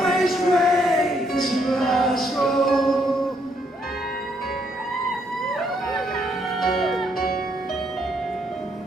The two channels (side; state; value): both; normal; correlation 0.73